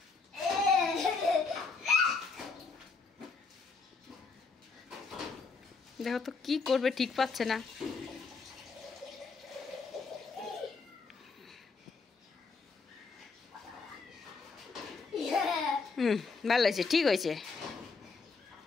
দেখো তো কি করবে, ঠিক পাচ্ছে না। ভালো হয়েছে, ঠিক হয়েছে।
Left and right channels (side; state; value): right; quieter; 4.5 dB